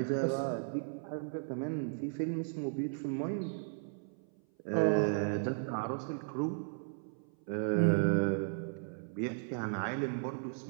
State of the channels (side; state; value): left; silent; 54 dB below the other